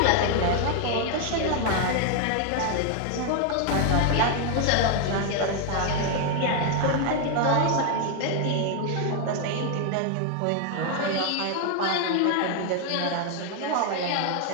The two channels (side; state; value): both; different; correlation 0.00